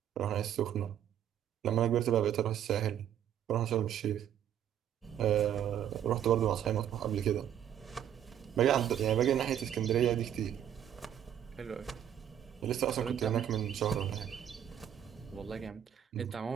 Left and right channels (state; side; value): quieter; left; 10.1 dB